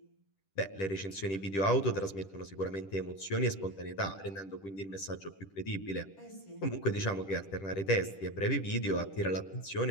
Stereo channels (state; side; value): late; right; 10 ms